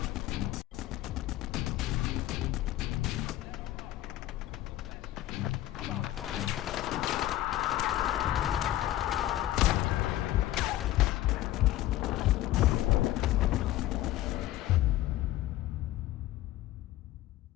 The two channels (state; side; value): quieter; right; 14.7 dB